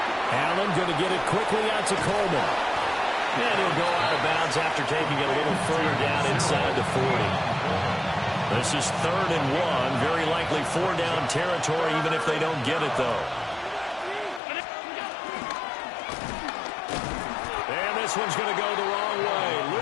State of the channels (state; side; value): drops out; right; at 14.4 s